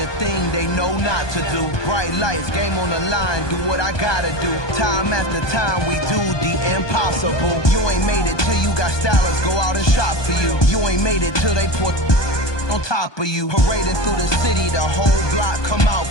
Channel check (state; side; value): late; right; 1.2 ms